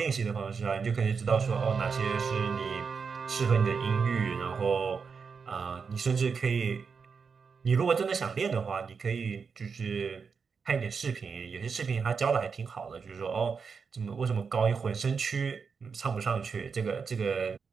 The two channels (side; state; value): left; quieter; 5.6 dB